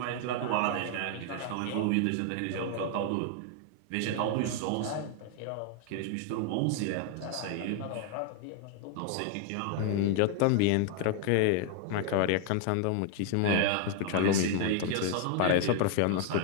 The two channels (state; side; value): different; both; correlation 0.00